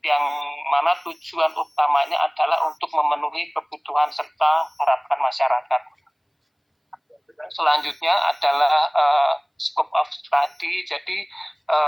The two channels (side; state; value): both; identical; correlation 1.00